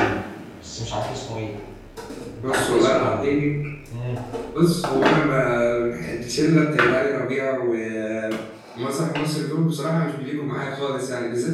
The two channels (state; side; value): identical; both; correlation 1.00